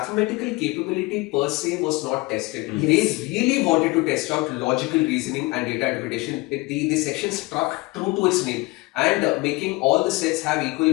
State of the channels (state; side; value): quieter; right; 23.4 dB